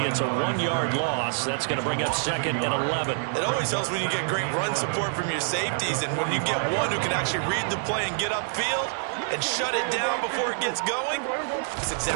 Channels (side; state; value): left; silent; digital silence